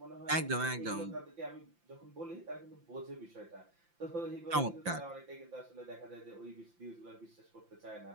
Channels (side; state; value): left; late; 5.8 ms